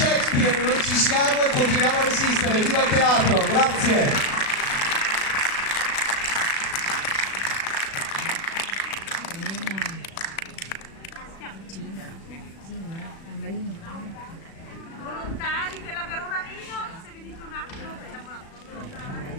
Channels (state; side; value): late; right; 36 ms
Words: noi ci siamo e continuiamo a resistere. Viva il teatro, grazie. Volontari della Verona Vino, se venite un attimo facciamo la foto.